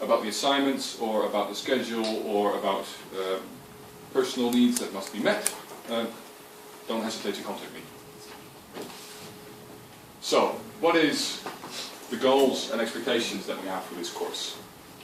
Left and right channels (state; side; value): identical; both; correlation 1.00